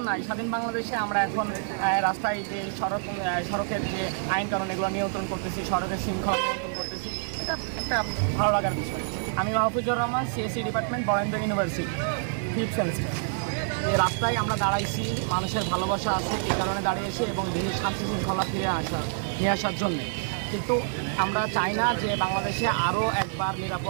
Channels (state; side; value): silent; left; 58 dB below the other